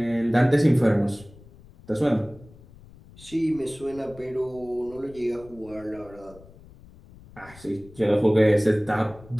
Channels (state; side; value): noise; left; rumble, 22 dB below the sound